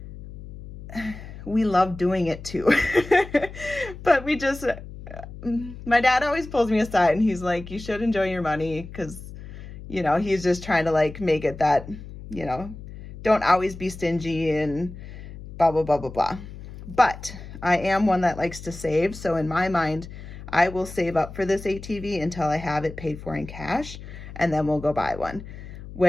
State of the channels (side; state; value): left; noise; hum, 13 dB below the sound